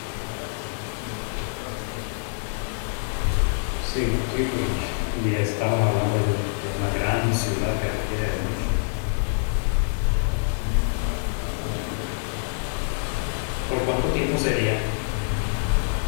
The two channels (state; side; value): silent; right; digital silence